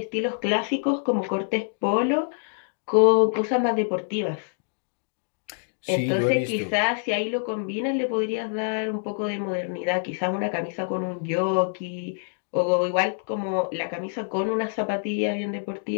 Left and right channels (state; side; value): silent; right; digital silence